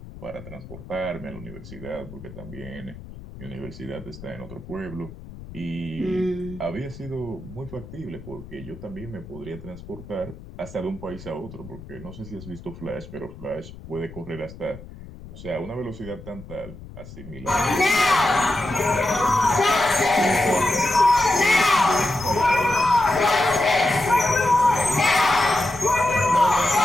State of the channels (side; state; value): left; noise; rumble, 16 dB below the sound